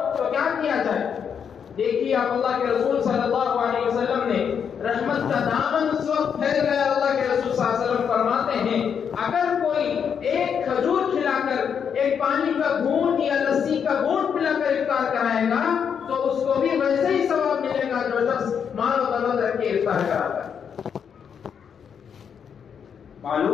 تو کیا کیا جائے؟ دیکھیے آپ اللہ کے رسول صلی اللہ علیہ وسلم نے رحمت کا دامن اس وقت پھیل گیا، اللہ کے رسول صلی اللہ علیہ وسلم فرماتے ہیں اگر کوئی ایک کھجور کھلا کر، ایک پانی کا گھونٹ یا لسی کا گھونٹ پلا کر افطار کرائے گا تو اس کو بھی ویسے ہی ثواب ملے گا جو شخص مال و دولت رکھ کے افطار کراتا ہے۔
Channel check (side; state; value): right; quieter; 7.4 dB